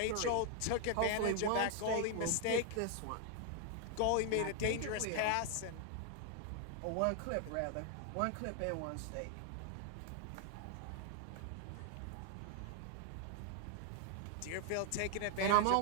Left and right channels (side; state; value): both; different; correlation 0.00